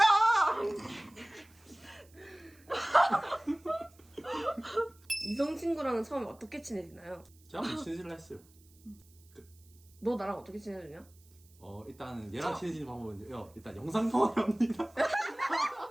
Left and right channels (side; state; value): right; noise; hiss, 28 dB below the sound